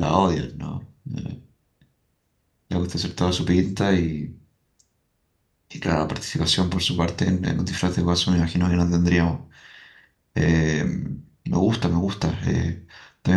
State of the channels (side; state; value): both; identical; correlation 1.00